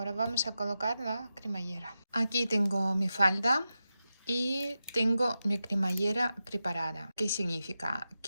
vamos a colocar la cremallera. Aquí tengo mi falda y tengo mi cremallera preparada. ¿Qué significa?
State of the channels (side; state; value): both; inverted; correlation -0.91